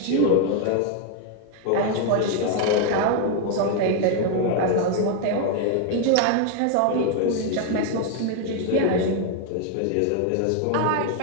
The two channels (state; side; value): different; both; correlation 0.01